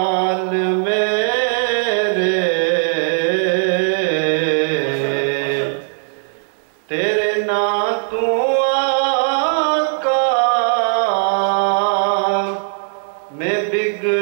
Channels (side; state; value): left; silent; 67 dB below the other